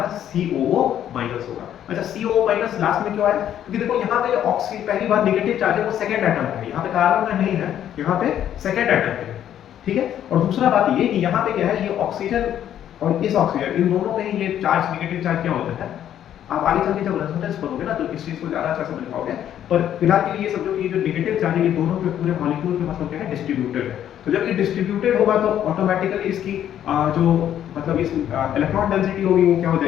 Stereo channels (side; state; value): right; quieter; 10.6 dB